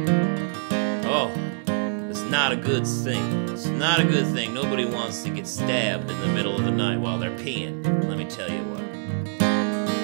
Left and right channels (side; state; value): left; silent; digital silence